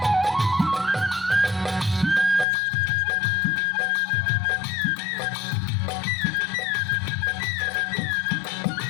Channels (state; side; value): drops out; right; at 2.5 s